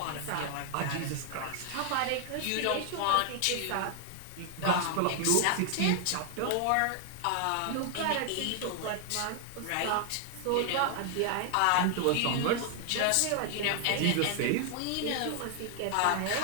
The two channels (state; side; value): different; both; correlation 0.00